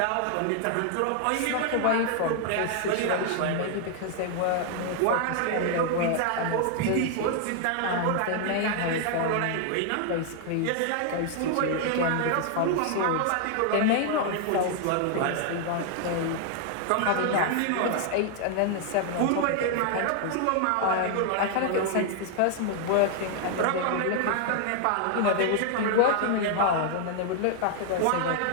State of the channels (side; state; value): both; different; correlation 0.00